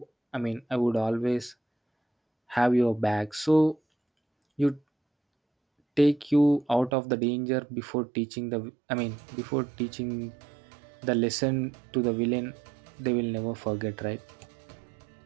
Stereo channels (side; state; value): left; drops out; at 6.9 s